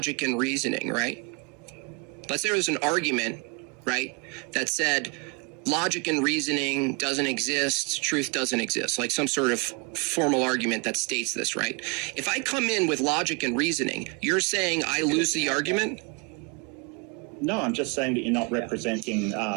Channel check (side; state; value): left; quieter; 31.7 dB